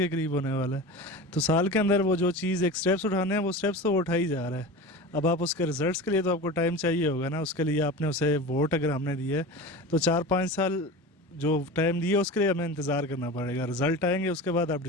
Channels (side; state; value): both; normal; correlation 0.31